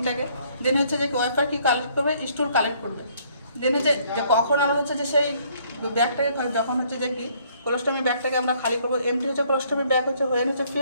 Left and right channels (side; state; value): both; inverted; correlation -0.64